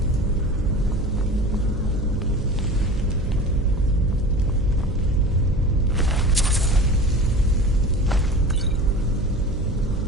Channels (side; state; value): right; noise; hum, 8 dB below the sound